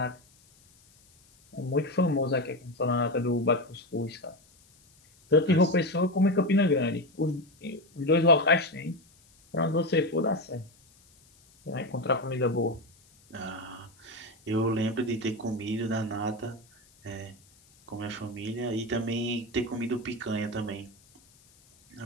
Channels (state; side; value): noise; left; hiss, 29 dB below the sound